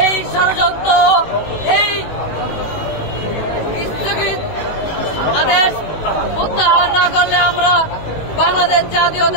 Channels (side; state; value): right; late; 18 ms